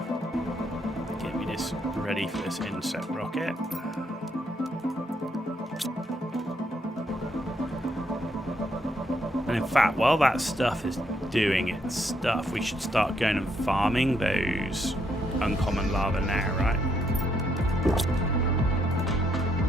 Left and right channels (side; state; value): both; normal; correlation 0.75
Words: Get me this ready for this insect rocket. And in fact, while that stuff is doing its stuff, we should start going and farming those uncommon lava now, right?